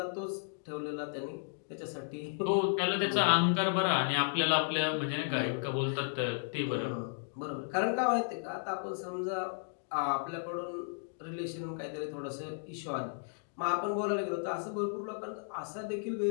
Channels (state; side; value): silent; right; digital silence